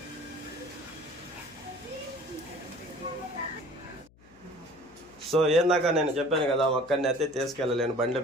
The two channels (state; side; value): noise; left; hum, 27 dB below the sound